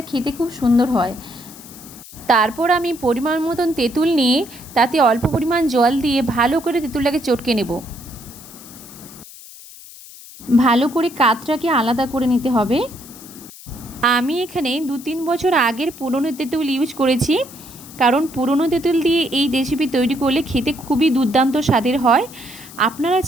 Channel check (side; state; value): left; noise; hiss, 18 dB below the sound